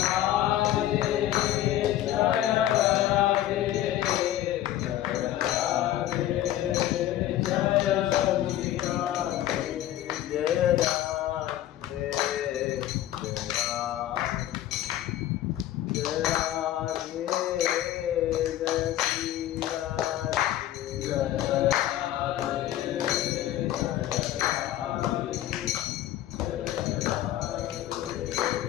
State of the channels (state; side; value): quieter; right; 13.0 dB